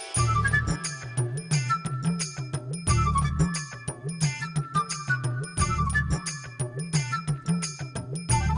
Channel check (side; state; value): both; identical; correlation 1.00